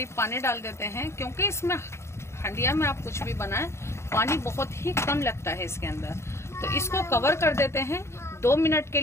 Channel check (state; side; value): late; right; 0.13 ms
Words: पानी डाल देते हैं, क्योंकि इसमें हंडिया में आप कुछ भी बनाएं पानी बहुत ही कम लगता है इसके अंदर। तो इसको कवर कर देते हैं 2 मिनट के